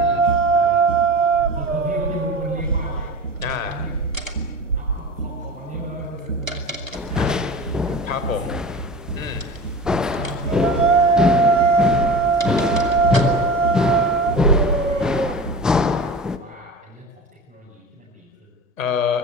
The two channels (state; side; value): normal; both; correlation 0.32